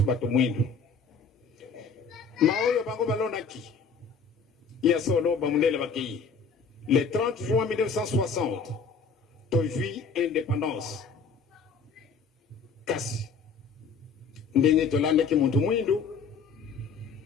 bato mwindu maoyo bango balonaki ya solo bamundele bakei le 30 juin 1960 tozwi indépendance kasi ndenge tolandaki muntu mwindu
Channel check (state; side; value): quieter; right; 5.1 dB